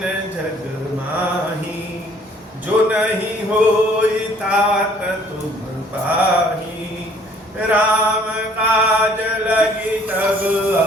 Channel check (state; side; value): normal; both; correlation 0.59